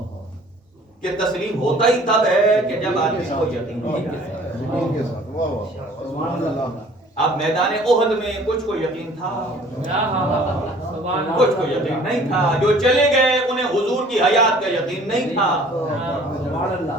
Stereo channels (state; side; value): normal; both; correlation 0.52